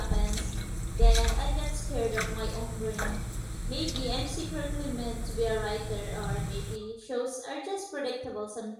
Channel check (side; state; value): both; identical; correlation 1.00